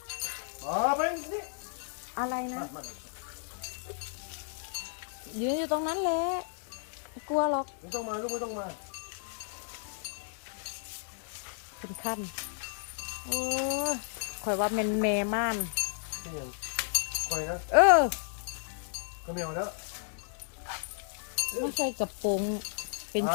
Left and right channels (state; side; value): silent; right; 56 dB below the other